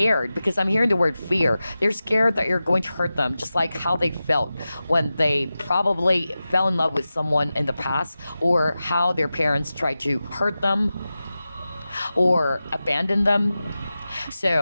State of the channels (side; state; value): both; inverted; correlation -0.94